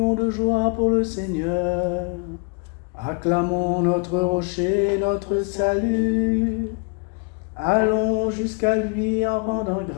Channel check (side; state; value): right; quieter; 33.7 dB